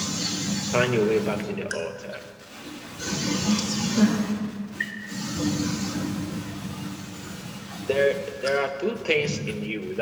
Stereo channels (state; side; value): identical; both; correlation 1.00